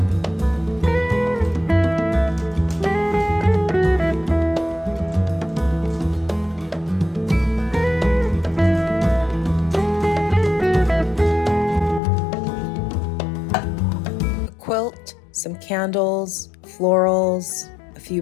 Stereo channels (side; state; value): right; drops out; at 12.0 s